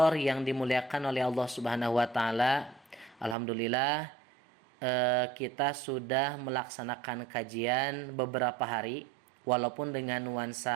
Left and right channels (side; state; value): left; drops out; at 3.4 s